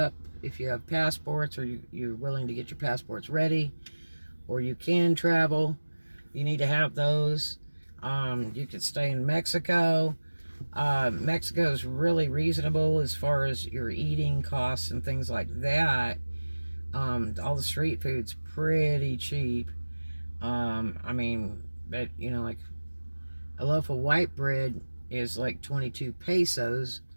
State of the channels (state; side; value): inverted; both; correlation -1.00